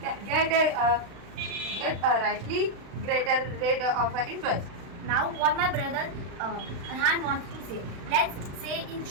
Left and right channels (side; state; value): left; late; 35 ms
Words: get a rightly greater rate of interest. Now, what my brother Arhan wants to say. Let's say in